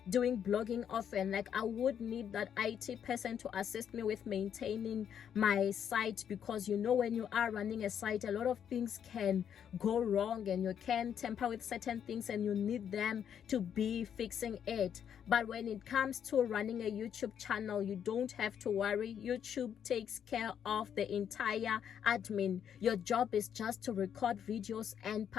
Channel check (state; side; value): quieter; right; 8.6 dB